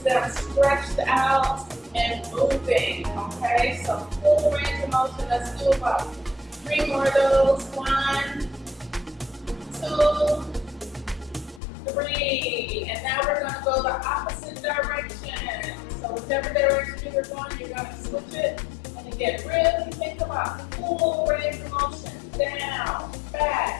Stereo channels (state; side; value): drops out; right; at 11.6 s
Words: them stretched out and moving. Okay, so full range of motion. Let's do about 3 more of those. 1, 2, 3. And now we're going to go the opposite direction. So whichever direction you're going, you're going to switch it. And again, really think about full range of motion. Down,